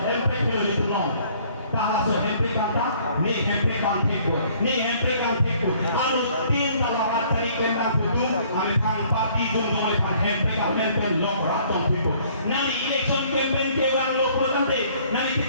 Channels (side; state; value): both; inverted; correlation -0.59